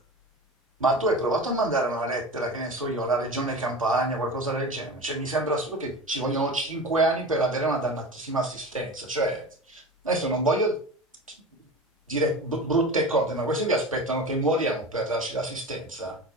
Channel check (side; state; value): both; normal; correlation 0.31